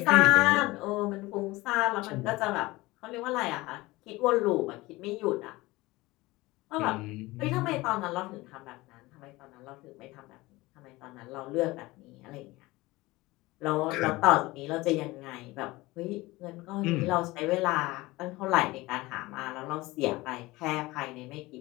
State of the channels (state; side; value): quieter; right; 20.5 dB